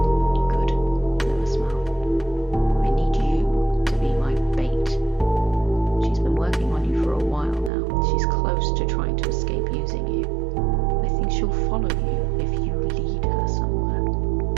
Noah smiled. I need you to be my bait. She's been working on you for a while now. She's close to trying to escape using you. I think she'll follow you if you lead her somewhere.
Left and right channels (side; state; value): left; drops out; at 7.7 s